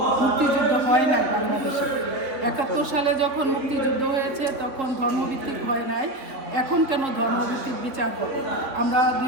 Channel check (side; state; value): left; late; 3.6 ms